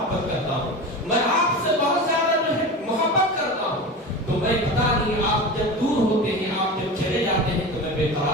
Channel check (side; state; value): both; normal; correlation 0.28